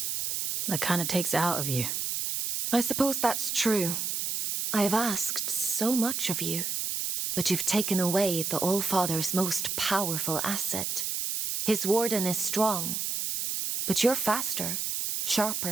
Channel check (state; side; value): noise; right; hiss, 2 dB below the sound